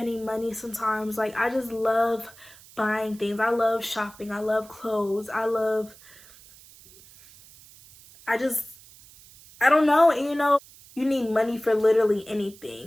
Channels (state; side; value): noise; right; hiss, 23 dB below the sound